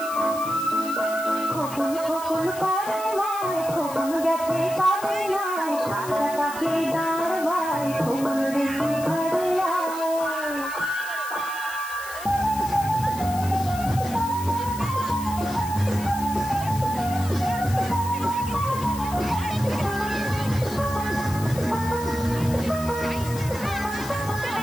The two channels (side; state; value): left; noise; hiss, 13 dB below the sound